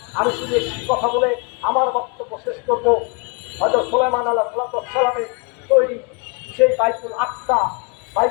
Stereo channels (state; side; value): quieter; right; 33.4 dB